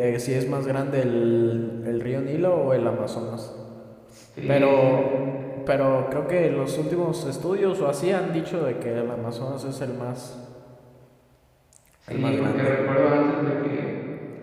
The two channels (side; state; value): both; identical; correlation 1.00